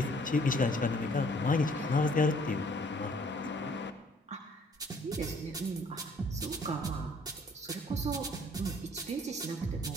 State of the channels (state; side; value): normal; both; correlation 0.59